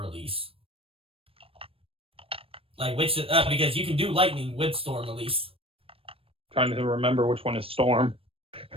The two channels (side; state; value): left; late; 0.27 ms